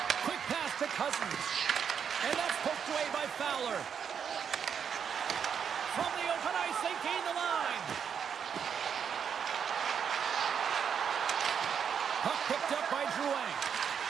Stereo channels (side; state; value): left; quieter; 7.4 dB